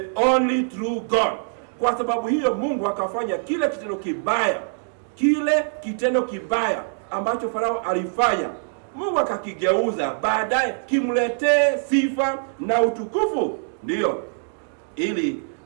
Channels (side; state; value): left; silent; digital silence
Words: only true God. Kwa sababu hiyo Mungu akafanya kile kitendo kibaya ambacho Farao alifanya, Mungu akakigeuza baadaye kimletee sifa na utukufu. Ndio, ili